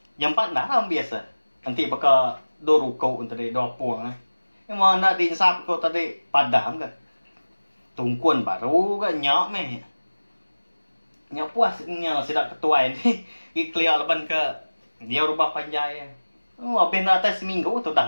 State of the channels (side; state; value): both; inverted; correlation -1.00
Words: Yang empat dah ram biasa. Nanti bakal do ruko tadi do puang. Yang mana din sap kau tadi padam ke. Tungkuan baru ke nyak meh. Nyak puas nyak sidak ketuai ni. Ikliar leban ke dia rubah panjai. Oh, habis nak atas seminggu tu dah